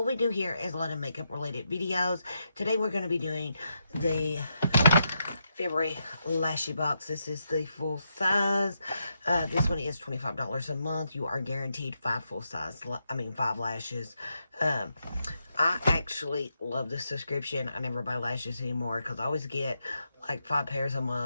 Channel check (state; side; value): inverted; both; correlation -0.82